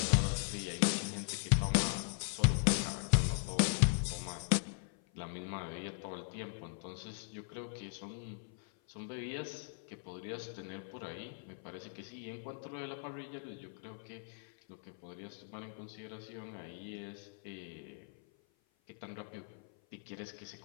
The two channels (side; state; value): right; silent; 52 dB below the other